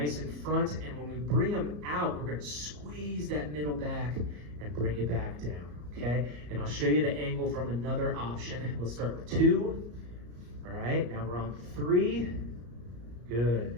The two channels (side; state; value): left; late; 34 ms